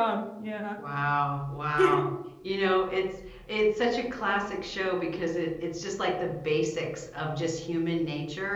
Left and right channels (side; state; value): both; identical; correlation 1.00